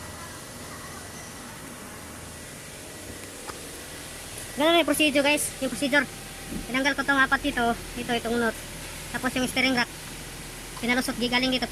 Ganun yung procedure guys, yung procedure. Tinanggal ko itong apat dito, itong nut. Tapos yung steering rack, pinalusot, gigaling dito,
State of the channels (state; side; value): identical; both; correlation 1.00